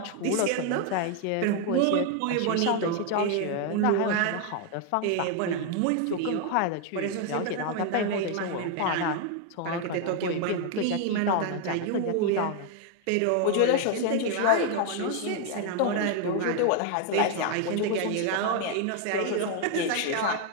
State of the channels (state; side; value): different; both; correlation 0.01